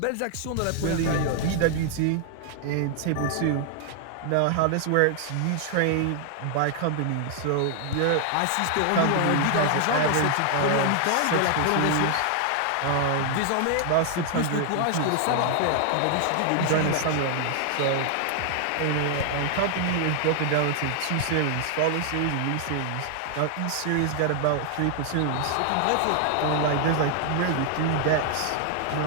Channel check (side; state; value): both; different; correlation 0.00